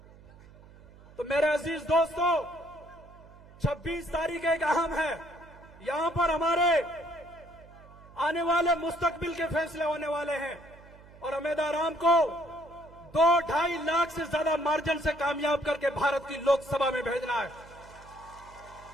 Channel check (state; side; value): noise; right; hum, 22 dB below the sound